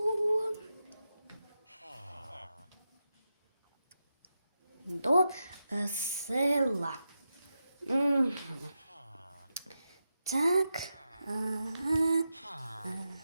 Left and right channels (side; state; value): both; inverted; correlation -0.89